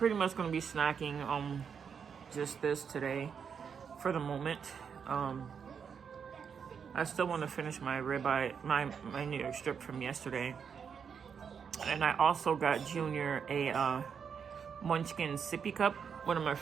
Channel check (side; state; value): left; quieter; 6.8 dB